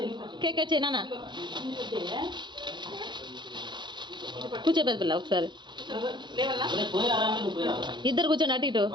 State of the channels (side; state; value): left; late; 0.22 ms